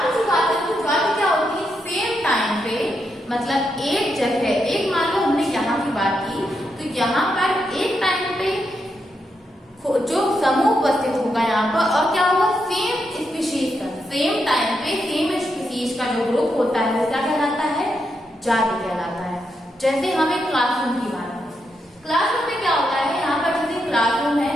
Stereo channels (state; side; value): normal; both; correlation 0.82